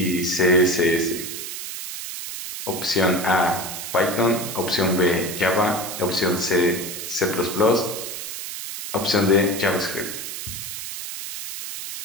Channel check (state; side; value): noise; right; hiss, 7 dB below the sound